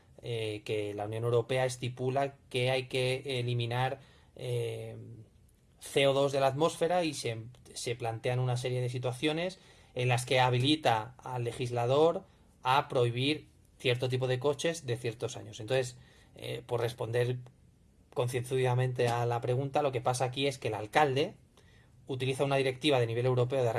que la Unión Europea estipula que hay que eliminar CO2 de la atmósfera y se plantean una serie de situaciones en las que habilita al legislador a prohibir cierto tipo de coches de ciertos años. Entonces, por responder concienzudamente a la pregunta, lo que pasa aquí es que el alcalde utiliza una directiva de nivel europeo, de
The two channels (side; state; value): both; identical; correlation 1.00